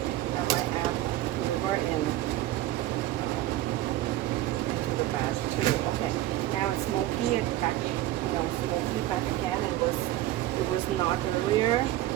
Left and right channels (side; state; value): left; quieter; 14.9 dB